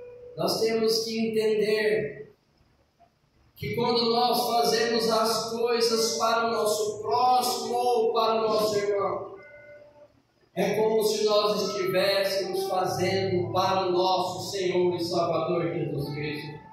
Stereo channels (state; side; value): identical; both; correlation 1.00